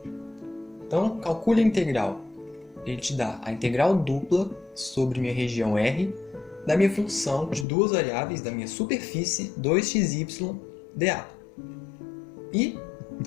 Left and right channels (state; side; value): drops out; right; at 7.7 s